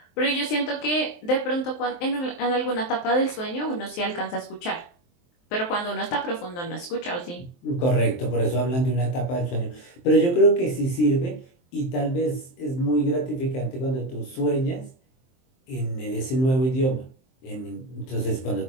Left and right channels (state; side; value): late; right; 23 ms